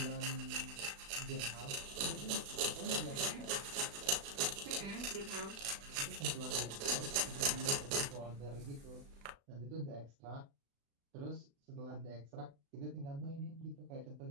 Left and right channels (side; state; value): left; late; 36 ms